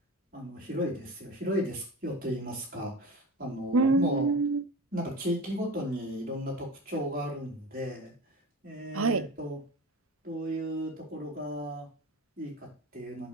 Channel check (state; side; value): normal; both; correlation 0.31